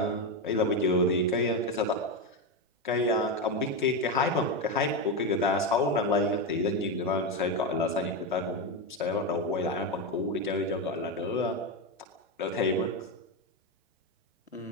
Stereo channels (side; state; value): both; normal; correlation 0.11